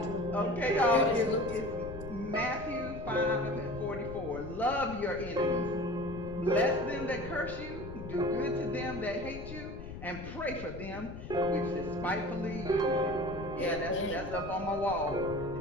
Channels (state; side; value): noise; left; rumble, 10 dB below the sound